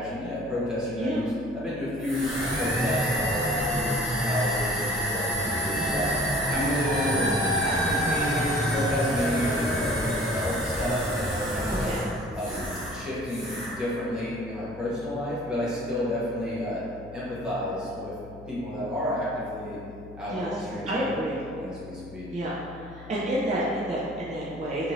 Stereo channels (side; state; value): left; noise; hum, 17 dB below the sound